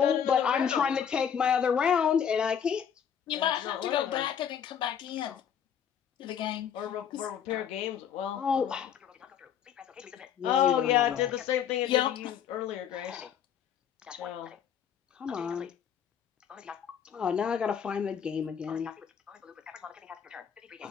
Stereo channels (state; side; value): quieter; right; 8.4 dB